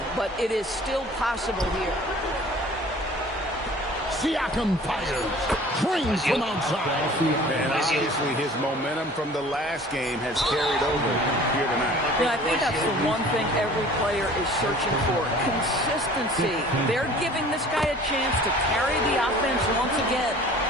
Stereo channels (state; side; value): normal; both; correlation 0.47